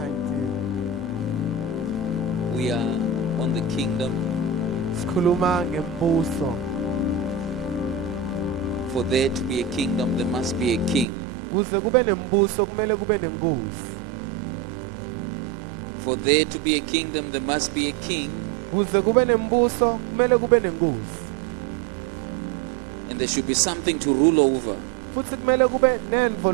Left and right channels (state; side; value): drops out; left; at 11.1 s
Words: We are on the kingdom. Sikhuluma ngembuso. For there to be a kingdom, there must be a king. Kuze kube nembuso kumele kube nenkosi. For there to be a kingdom, there must be a king. Kuze kube nembuso kumele kube nenkosi. And there should be something to rule over. Futhi kumele kube nento